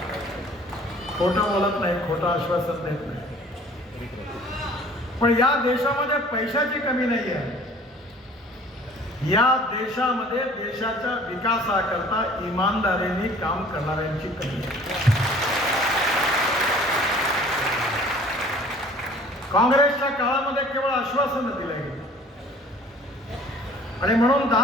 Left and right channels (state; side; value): normal; both; correlation 0.50